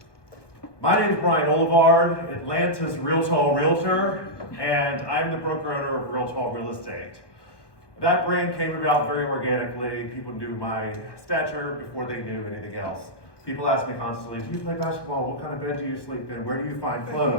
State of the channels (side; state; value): right; late; 1.1 ms